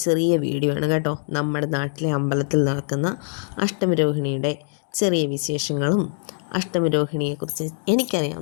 ചെറിയ വീഡിയോ ആണ് കേട്ടോ. നമ്മുടെ നാട്ടിലെ അമ്പലത്തിൽ നടക്കുന്ന അഷ്ടമിരോഹിണിയുടെ ചെറിയ വിശേഷങ്ങളും അഷ്ടമിരോഹിണിയെക്കുറിച്ച്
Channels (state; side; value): silent; right; digital silence